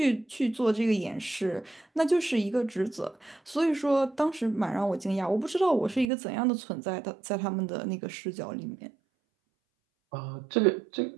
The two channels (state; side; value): drops out; left; at 6.1 s